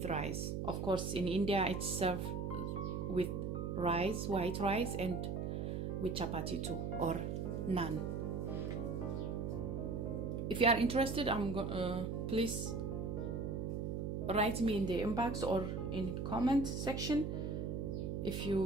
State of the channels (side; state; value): right; noise; hum, 2 dB below the sound